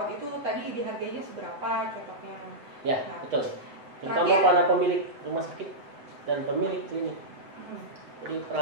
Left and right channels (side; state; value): left; late; 8.1 ms